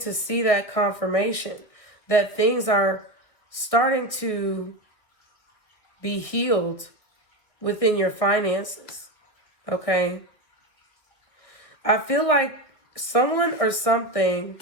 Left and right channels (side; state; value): right; late; 2.2 ms